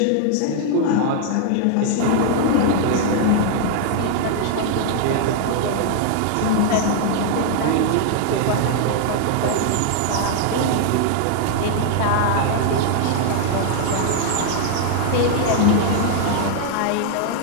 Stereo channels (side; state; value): both; different; correlation 0.00